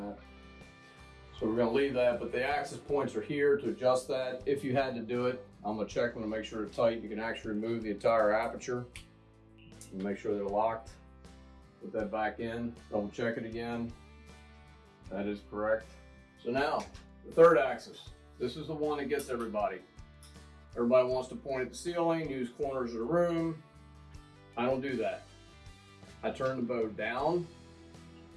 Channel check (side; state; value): both; identical; correlation 1.00